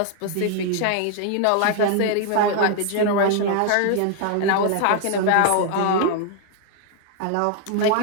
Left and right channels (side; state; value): both; different; correlation 0.00